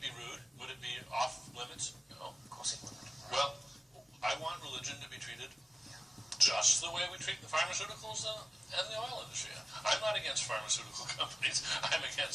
be rude? Would it be off limits? No. Of course it wouldn't. Well, I want religion to be treated just the way we treat the pharmaceuticals and the oil industry. I'm not against pharmaceutical companies. I'm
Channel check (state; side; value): normal; both; correlation 0.96